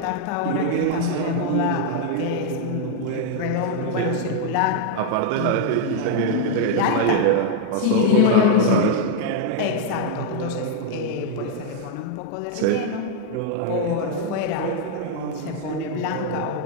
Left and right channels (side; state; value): both; different; correlation 0.00